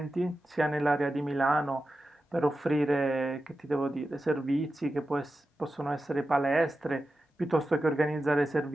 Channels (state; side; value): normal; both; correlation 0.92